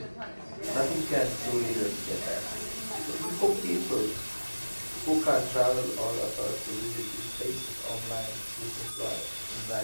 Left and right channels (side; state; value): both; inverted; correlation -1.00